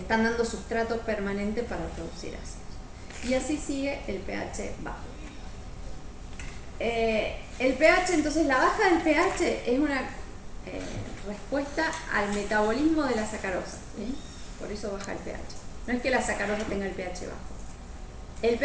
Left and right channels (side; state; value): both; identical; correlation 1.00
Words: dando sustrato permanente para producir ácidos. Y así sigue el pH bajo. El pH, entonces la baja del pH es una respuesta al metabolismo de la sacarosa, ¿sí? Por eso baja el pH. No es que la sacarosa tenga el pH bajo. El